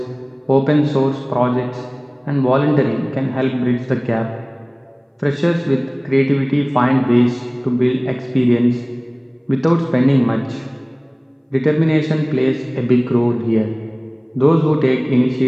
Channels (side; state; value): both; identical; correlation 1.00